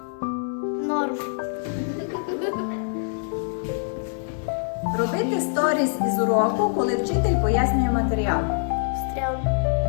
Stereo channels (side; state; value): right; silent; digital silence